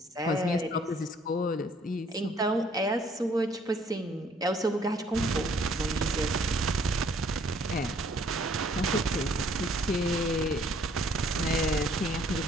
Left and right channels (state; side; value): normal; both; correlation 0.62